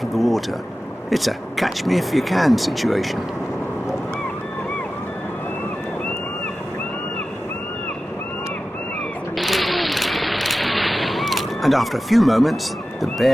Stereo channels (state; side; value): normal; both; correlation 0.94